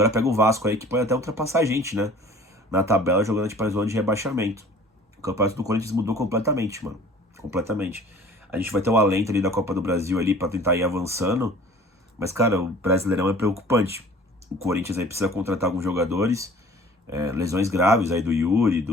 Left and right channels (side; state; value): both; normal; correlation 0.48